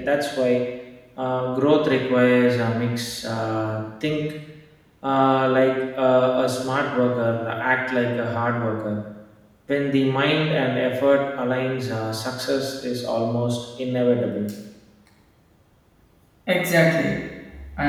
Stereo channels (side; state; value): both; identical; correlation 1.00